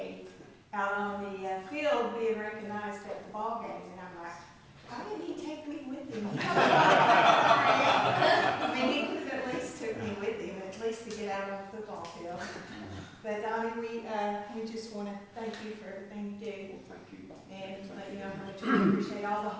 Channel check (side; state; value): both; identical; correlation 1.00